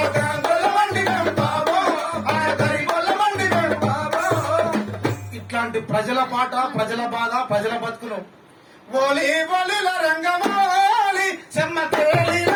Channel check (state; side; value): identical; both; correlation 1.00